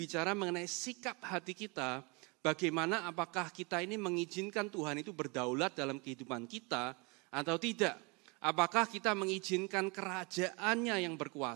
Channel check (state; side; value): quieter; left; 29.5 dB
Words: mengenai sikap hati kita, bagaimana apakah kita ini mengizinkan Tuhan itu berdaulat dalam kehidupan kita atau tidak. Apakah kita mengizinkan kerajaannya yang